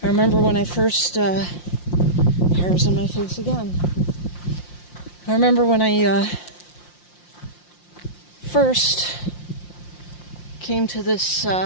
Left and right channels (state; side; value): late; right; 5.7 ms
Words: I remember when I first, hairs on my face again. I remember when I first came to this